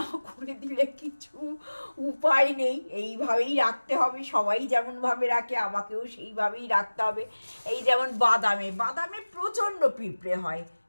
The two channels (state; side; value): inverted; both; correlation -1.00